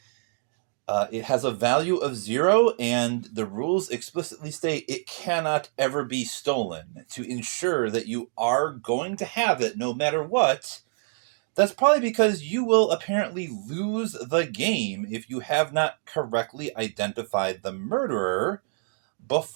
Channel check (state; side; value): silent; left; 58 dB below the other